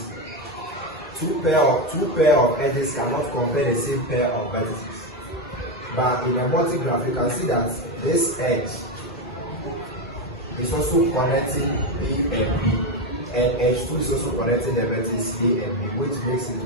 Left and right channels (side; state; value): both; normal; correlation 0.10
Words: two pair of edges cannot compare the same pair of vertices. But in a multi-graph, you can see that this edge is also connecting A and B, and edge 2 is also connecting the vertex A and B, which makes it